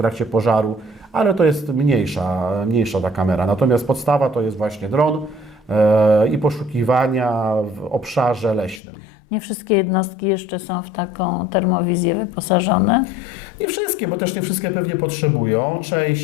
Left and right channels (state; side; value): drops out; right; at 8.8 s